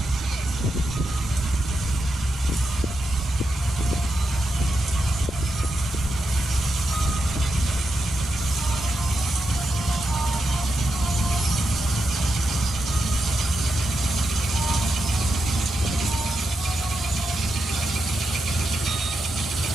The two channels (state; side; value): normal; both; correlation 0.86